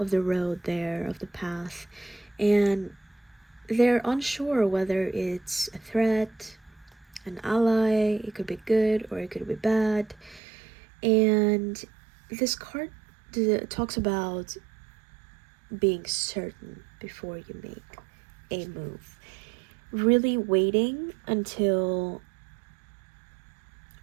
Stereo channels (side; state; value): left; drops out; at 10.4 s